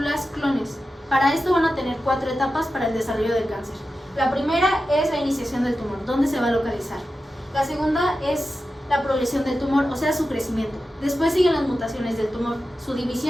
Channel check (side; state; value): both; normal; correlation 0.92